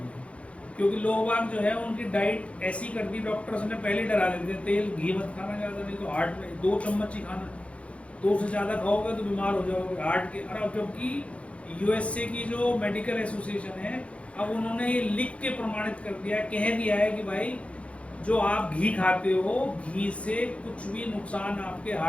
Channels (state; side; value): late; right; 0.062 ms